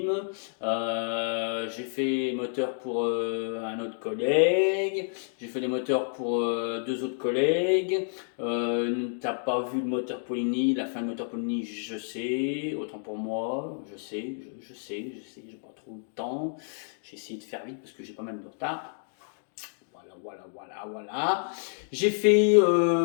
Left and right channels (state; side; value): silent; right; digital silence